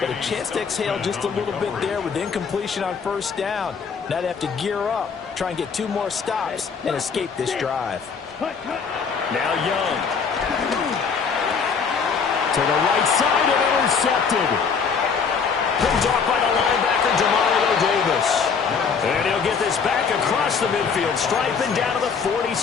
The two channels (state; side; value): quieter; right; 5.9 dB